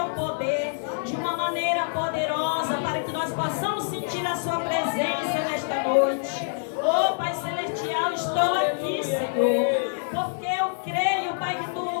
poder de uma maneira poderosa, para que nós possamos sentir a Sua presença nesta noite. Oh, Pai Celestial, estou aqui, Senhor, porque eu creio, Pai, que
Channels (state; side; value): silent; right; digital silence